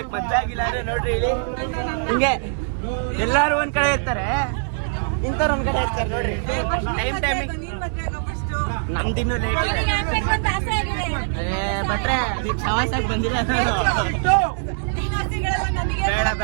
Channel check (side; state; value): left; silent; 64 dB below the other